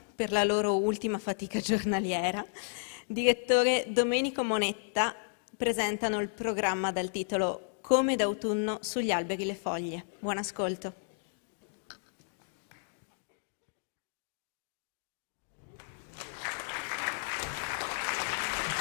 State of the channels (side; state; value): right; silent; digital silence